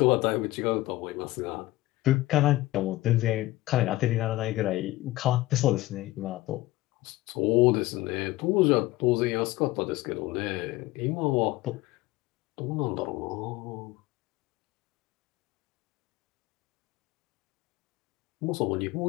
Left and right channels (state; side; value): quieter; right; 17.9 dB